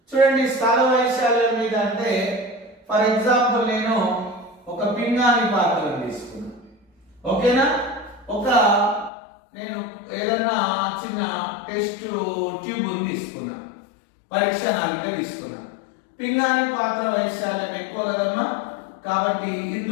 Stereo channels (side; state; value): right; drops out; at 9.1 s